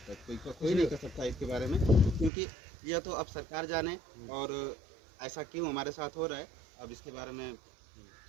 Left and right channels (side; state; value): left; drops out; at 2.3 s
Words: है। कोई नहीं कर सकता इसके बारे में, क्योंकि यह तो अब सरकार जाने और ऐसा क्यों हमारे साथ हो रहा है। अब इसके बारे में